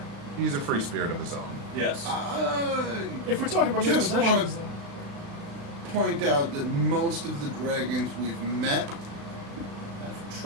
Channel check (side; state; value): left; late; 36 ms